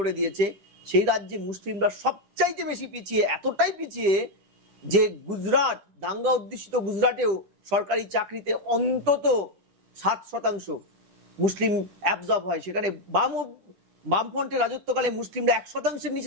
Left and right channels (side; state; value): left; late; 10 ms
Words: দিয়েছে, সেই রাজ্যে মুসলিমরা সবচাইতে বেশি পিছিয়ে, এতটাই পিছিয়ে যে গুজরাট, দাঙ্গা অধ্যুষিত গুজরাটেও সরকারি চাকরিতে অন্তত 7% মুসলিম অ্যাবজর্ব হয়। সেখানে বামফ্রন্টের রাজত্বকালে মুসলিমরা 1%-এর